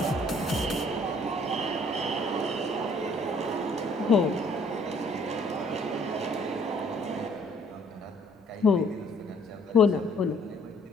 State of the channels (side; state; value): both; normal; correlation 0.60